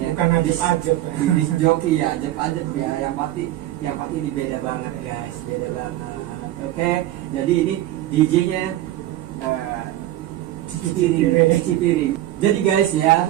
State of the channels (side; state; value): left; quieter; 14.4 dB